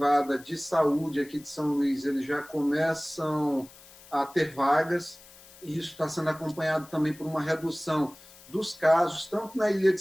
de saúde aqui de São Luís, eles já começam a ter vagas, e isso está sendo acompanhado também por uma redução dos casos, tanto na ilha de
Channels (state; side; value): noise; left; hiss, 22 dB below the sound